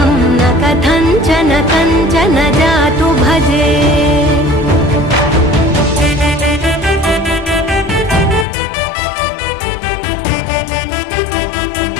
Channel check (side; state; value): right; drops out; at 8.5 s